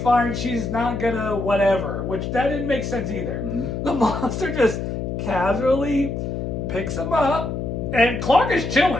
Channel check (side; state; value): left; noise; hum, 4 dB below the sound